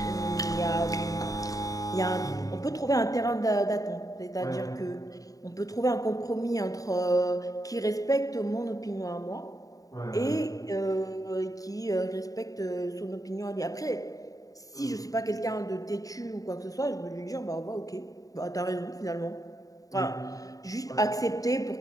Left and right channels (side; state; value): right; late; 0.17 ms